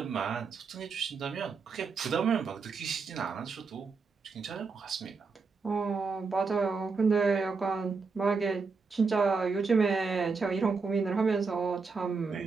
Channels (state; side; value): quieter; left; 4.7 dB